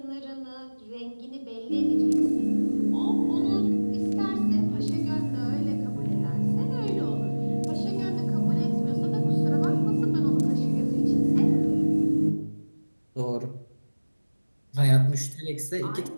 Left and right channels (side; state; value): both; inverted; correlation -1.00